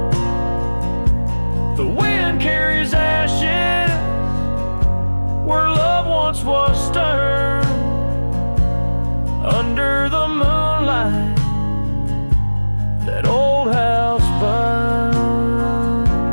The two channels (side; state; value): both; inverted; correlation -1.00